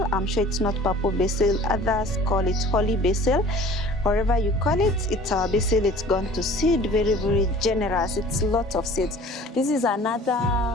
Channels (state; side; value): normal; both; correlation 0.47